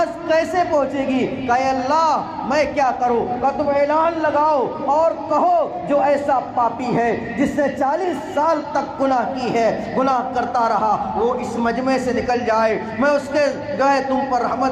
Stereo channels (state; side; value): identical; both; correlation 1.00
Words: کیسے پہنچے گی؟ کہ اے اللہ میں کیا کروں؟ کہ تم اعلان لگاؤ اور کہو جو ایسا پاپی ہے جس نے 40 سال تک گناہ کی ہے، گناہ کرتا رہا، وہ اس مجمع سے نکل جائے، میں اس کے جو ہے تم پر